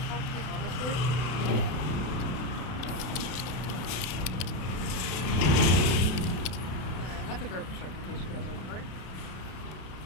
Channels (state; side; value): late; right; 32 ms